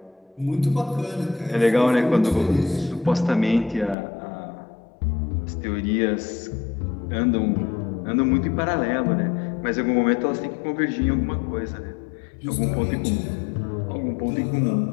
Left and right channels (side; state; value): right; drops out; at 4.0 s